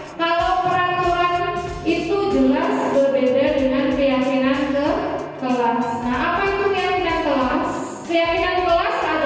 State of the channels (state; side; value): identical; both; correlation 1.00